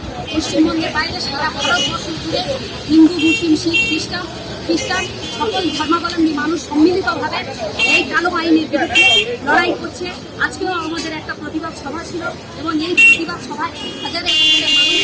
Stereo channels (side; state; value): both; identical; correlation 1.00